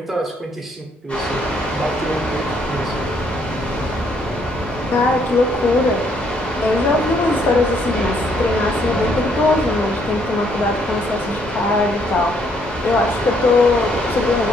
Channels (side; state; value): both; normal; correlation 0.69